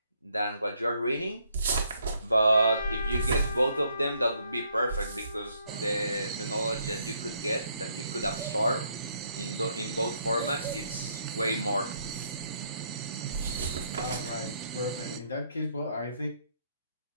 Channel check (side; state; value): both; inverted; correlation -0.71